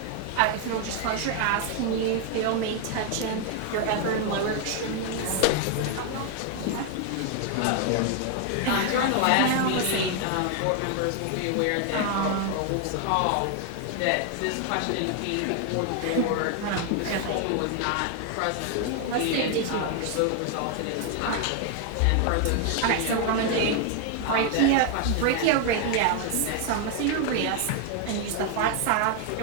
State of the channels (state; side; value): different; both; correlation 0.01